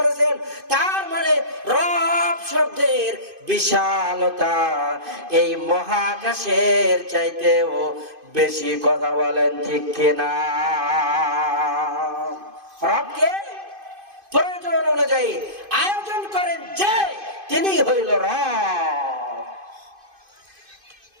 তার মানে রব শব্দের বিশালতা এই মহাকাশের চাইতেও বেশি। কথা বলেন ঠিক কিনা? রবকে প্রয়োজন অনুযায়ী আয়োজন করেন যে তিনি হইল রব।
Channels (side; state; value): left; late; 2.5 ms